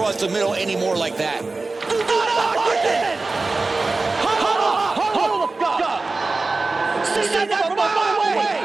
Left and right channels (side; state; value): left; quieter; 3.6 dB